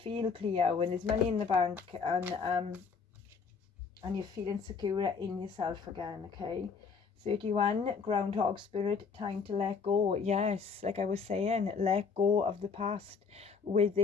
clear when there's money in the bank, and you're feeling secure in yourself again, okay? 31, Groundhog Spirit, time to let go. Yes, like I was saying, let go of the past with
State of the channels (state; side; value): quieter; right; 5.5 dB